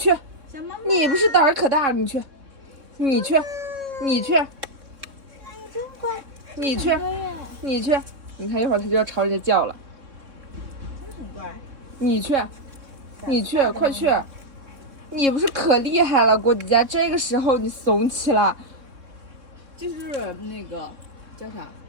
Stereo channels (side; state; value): left; late; 3.6 ms